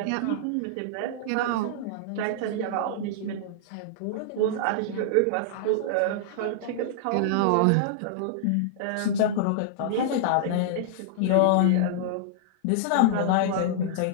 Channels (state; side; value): different; both; correlation -0.02